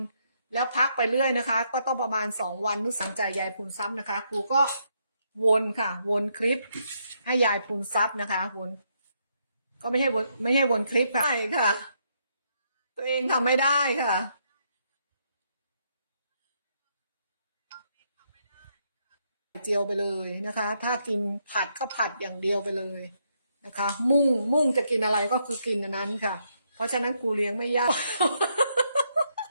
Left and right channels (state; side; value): inverted; both; correlation -0.76